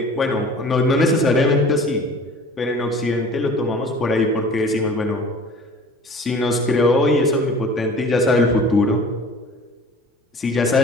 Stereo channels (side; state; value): both; normal; correlation 0.45